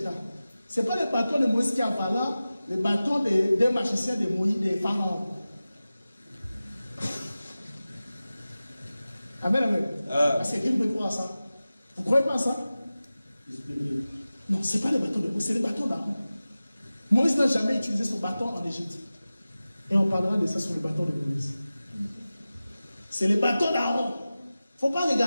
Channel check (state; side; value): inverted; both; correlation -0.96